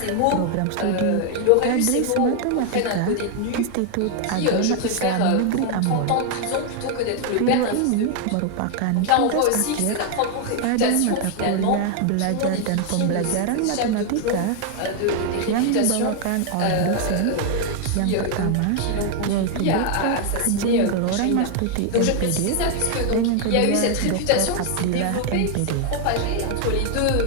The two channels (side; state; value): both; different; correlation 0.00